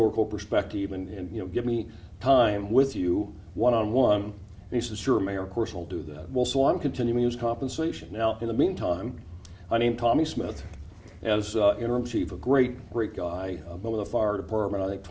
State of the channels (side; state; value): both; identical; correlation 1.00